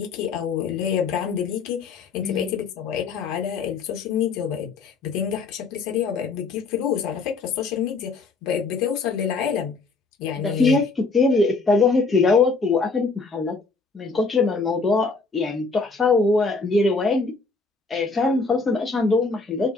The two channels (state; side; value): quieter; right; 4.1 dB